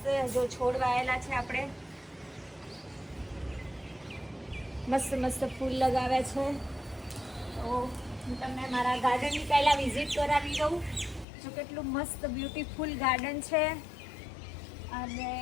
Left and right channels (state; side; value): drops out; right; at 11.2 s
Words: જો છોડ વાયેલા છે. આપણે મસ્ત મસ્ત ફૂલ લગાવ્યા છે. તો હું તમને મારા ગાર્ડનની પહેલાં વિઝિટ કરાવી દઉં. જો કેટલું મસ્ત બ્યુટીફુલ ગાર્ડન છે. અને